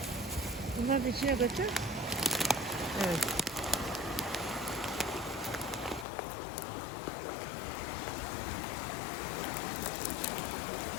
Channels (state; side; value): drops out; right; at 6.1 s